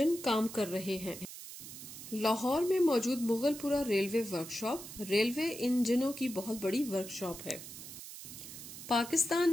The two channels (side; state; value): right; noise; hiss, 12 dB below the sound